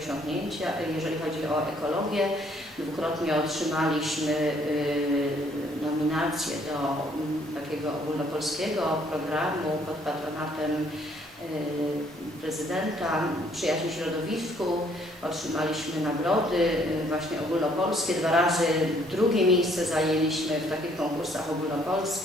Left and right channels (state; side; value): normal; both; correlation 0.64